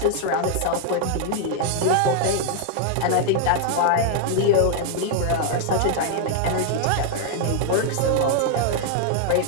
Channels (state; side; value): different; both; correlation 0.00